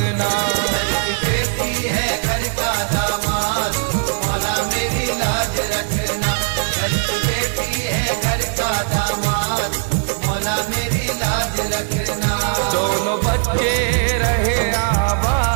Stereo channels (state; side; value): silent; left; digital silence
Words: घर की बेटी है घर का दामाद, मौला मेरी लाज रखना। घर की बेटी है घर का दामाद, मौला मेरी लाज रखना। दोनों बच्चे रहे